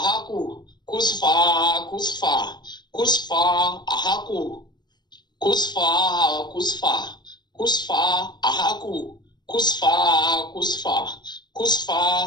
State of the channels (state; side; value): late; right; 0.21 ms